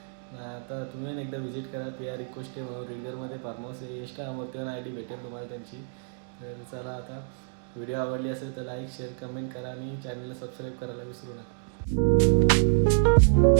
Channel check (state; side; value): silent; left; digital silence